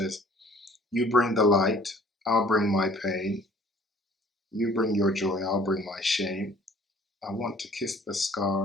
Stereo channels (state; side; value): normal; both; correlation 0.54